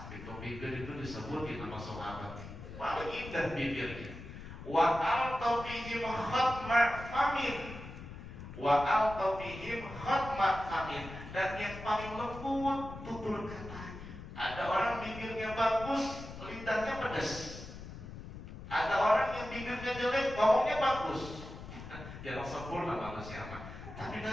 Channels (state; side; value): noise; left; rumble, 12 dB below the sound